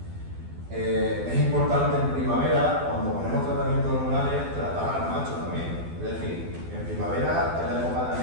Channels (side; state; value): left; late; 12 ms